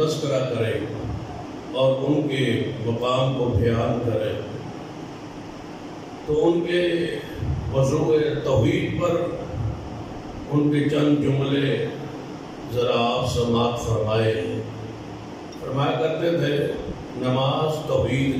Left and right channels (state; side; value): identical; both; correlation 1.00